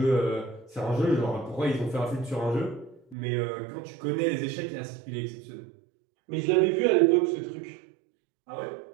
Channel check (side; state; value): left; drops out; at 3.2 s